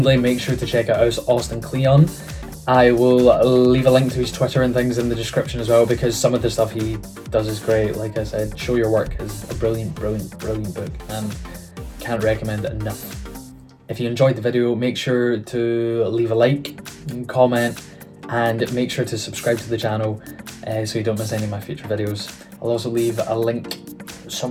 make sure to check out Austin Kleon. I will leave a link to his Twitter and things in the description as well, because some of the stuff he does is great. Like I said, Show Your Work is a brilliant book, and can't recommend it enough. If you enjoyed the video, make sure to leave a like and comment, and make sure to subscribe to the channel so you don't miss any of my future videos. I'll also leave a link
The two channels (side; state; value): both; identical; correlation 1.00